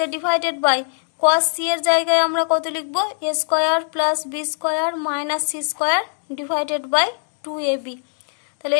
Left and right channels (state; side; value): silent; right; digital silence